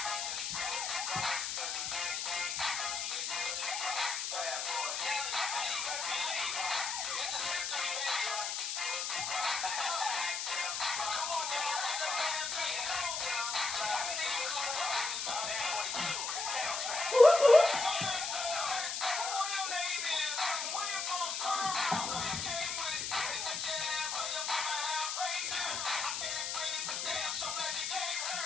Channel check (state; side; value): noise; left; hiss, 2 dB below the sound